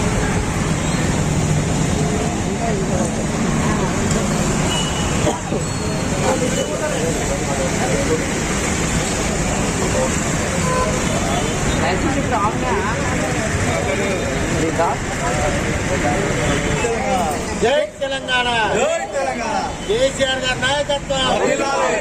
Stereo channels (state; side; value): identical; both; correlation 1.00